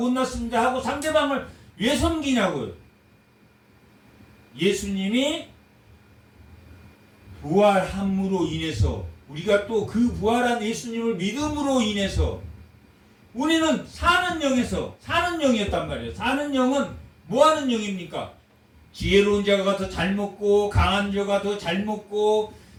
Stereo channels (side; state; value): both; identical; correlation 1.00